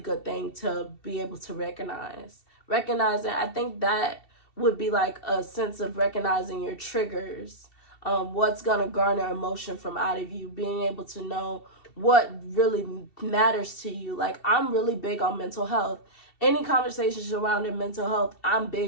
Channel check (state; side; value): late; right; 2.7 ms